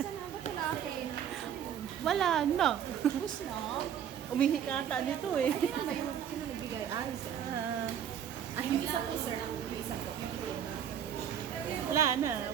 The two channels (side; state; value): left; quieter; 9.2 dB